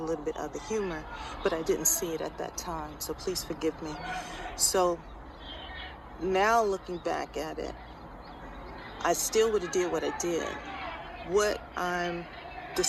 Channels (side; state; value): both; identical; correlation 1.00